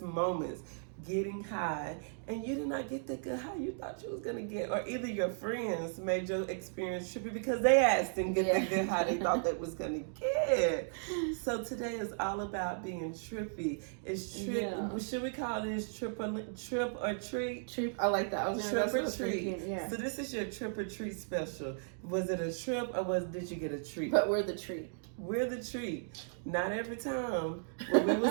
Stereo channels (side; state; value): left; silent; digital silence